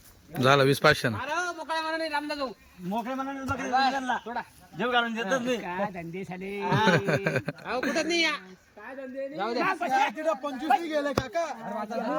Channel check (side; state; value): both; identical; correlation 1.00